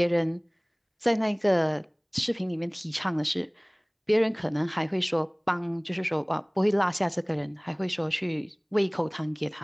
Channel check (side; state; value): both; identical; correlation 1.00